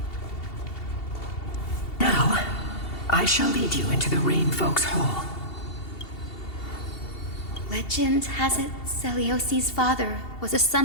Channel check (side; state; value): right; late; 2.7 ms